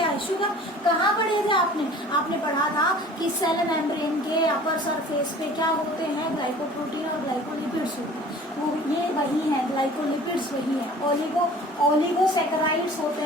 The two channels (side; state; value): both; normal; correlation 0.46